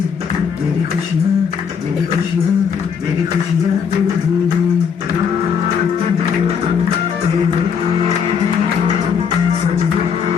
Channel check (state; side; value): quieter; right; 6.8 dB